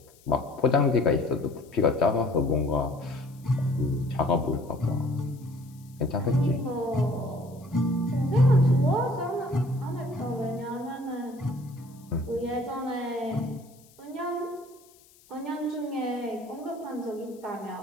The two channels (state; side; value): noise; left; hiss, 28 dB below the sound